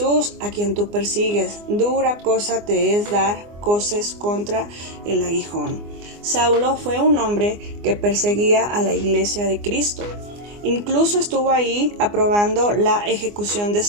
a quien tú persigues. Dura cosa te es dar coces contra el aguijón. Saulo fue un hombre que perseguía a la iglesia de Cristo. Incluso estuvo ahí aprobando la ejecución de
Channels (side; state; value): left; late; 24 ms